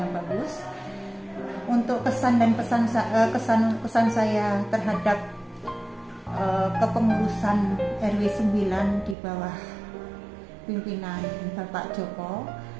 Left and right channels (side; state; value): left; drops out; at 9.2 s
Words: bagus. Untuk kesan dan kesan saya terhadap kepengurusan RW 9 di bawah pimpinan Bapak Joko,